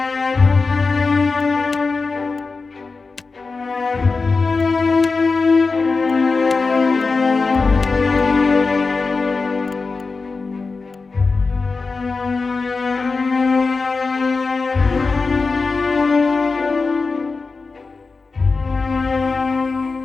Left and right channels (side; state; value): right; quieter; 4.2 dB